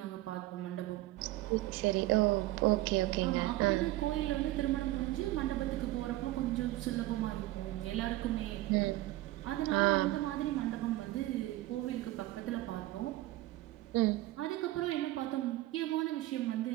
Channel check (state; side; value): quieter; left; 17.2 dB